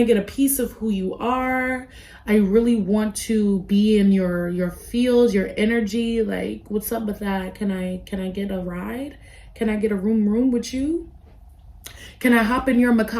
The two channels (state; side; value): identical; both; correlation 1.00